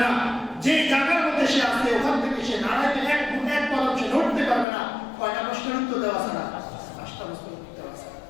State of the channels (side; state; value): right; drops out; at 4.7 s